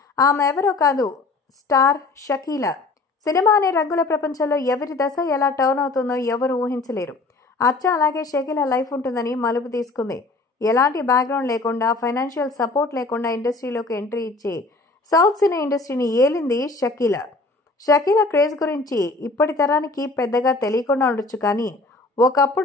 ఆమె ఎవరో కాదు, స్టార్ షకీలా. సినిమా అనే రంగుల ప్రపంచంలో ఎవరి దశ ఎలా టర్న్ అవుతుందో ఎవరు ఊహించలేరు. అచ్చా అలాగే షకీలా లైఫ్ ఉంటుందని మలుపు తీసుకుంది. ఎలాంటి బ్యాక్గ్రౌండ్ లేకుండా, ఫైనాన్షియల్ సపోర్ట్ లేకుండా ఇండస్ట్రీలోకి ఎంట్రీ ఇచ్చి సౌత్ సినీ ఇండస్ట్రీని ఏలింది షకీలా. షకీలా క్రేజ్ గురించి ఇప్పటి తరానికి పెద్దగా తెలియకుండా ఉండొచ్చు, కానీ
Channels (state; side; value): quieter; right; 3.4 dB